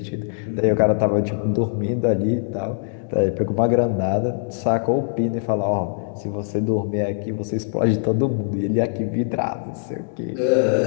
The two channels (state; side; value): silent; right; digital silence